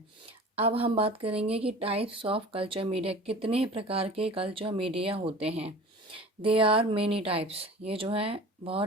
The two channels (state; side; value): normal; both; correlation 0.40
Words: अब हम बात करेंगे कि टाइप्स ऑफ कल्चर मीडिया, कितने प्रकार के कल्चर मीडिया होते हैं। दे आर मेनी टाइप्स, ये जो है